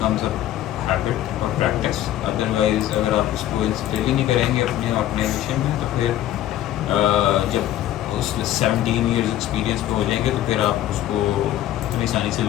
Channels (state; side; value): quieter; right; 13.0 dB